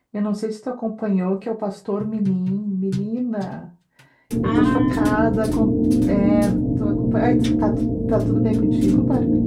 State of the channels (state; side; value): identical; both; correlation 1.00